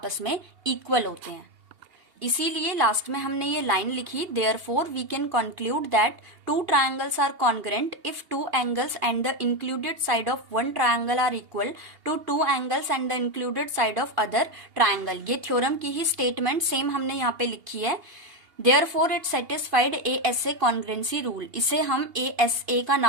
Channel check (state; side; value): late; left; 2.8 ms